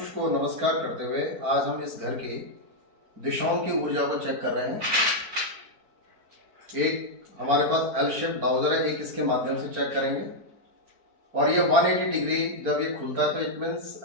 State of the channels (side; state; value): left; late; 4.3 ms